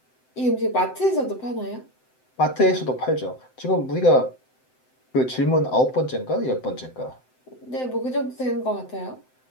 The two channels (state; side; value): late; right; 7.8 ms